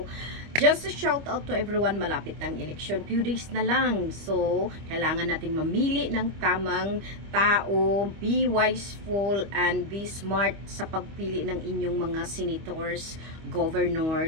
just a shout out to everyone. Malapit ng election. Few days na lang. So, kailangan nating mamili ng tamang tao. Be wiseful and be smart sa pagpili ng inyong mga senators,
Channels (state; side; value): late; left; 25 ms